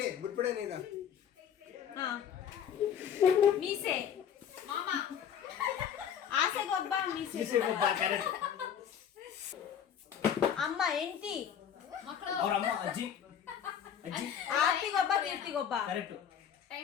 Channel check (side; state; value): right; quieter; 8.6 dB